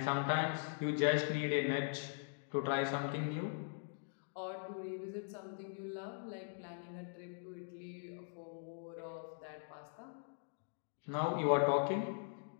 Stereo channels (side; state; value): right; silent; digital silence